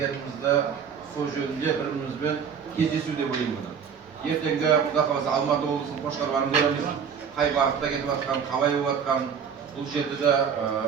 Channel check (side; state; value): left; quieter; 7.1 dB